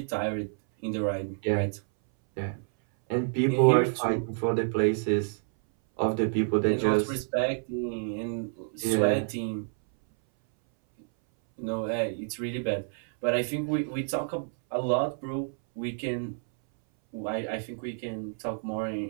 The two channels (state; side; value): silent; left; 59 dB below the other